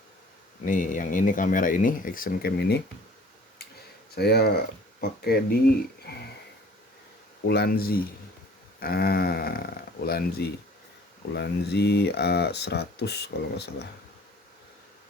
Nih, yang ini kamera ini, action cam ini saya pakai di Ulanzi. Ulanzi A100 kalau nggak salah.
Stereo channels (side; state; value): both; normal; correlation 0.50